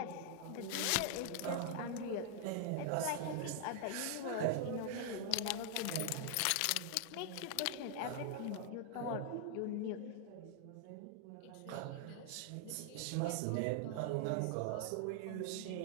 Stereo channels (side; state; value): both; different; correlation 0.00